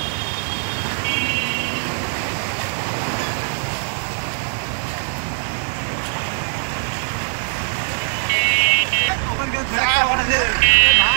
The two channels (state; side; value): silent; left; 65 dB below the other